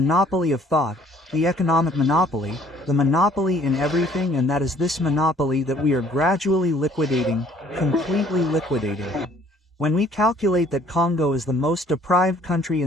of thought, the economic monopoly, the monopoly in everything, and that is this monopoly that we are gradually liquidating, completely liquidating. When we calculate that Congo is the most deprived country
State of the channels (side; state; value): both; normal; correlation 0.58